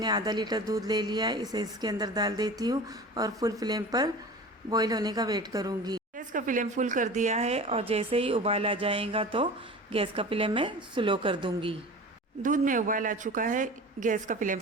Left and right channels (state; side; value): normal; both; correlation 0.36